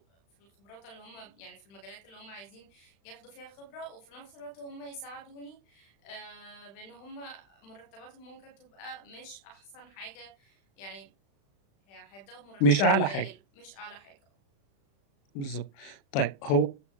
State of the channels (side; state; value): right; late; 36 ms